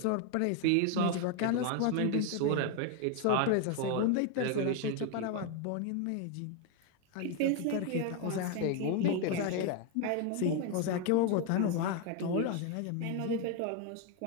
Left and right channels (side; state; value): both; different; correlation 0.01